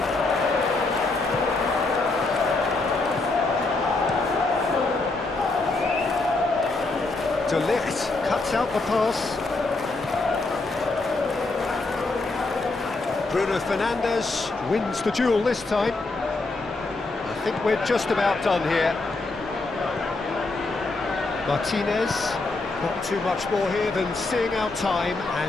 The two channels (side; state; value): right; quieter; 3.4 dB